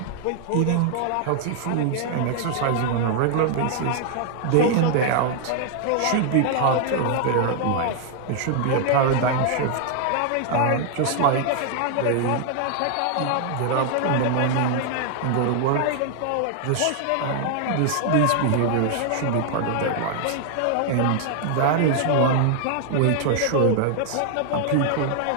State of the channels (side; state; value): both; different; correlation 0.00